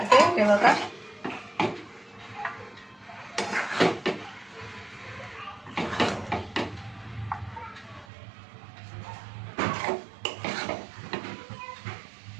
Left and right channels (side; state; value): left; drops out; at 8.1 s